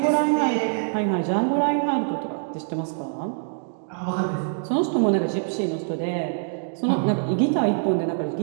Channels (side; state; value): left; silent; digital silence